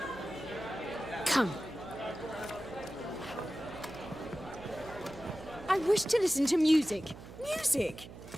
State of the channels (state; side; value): noise; right; hum, 15 dB below the sound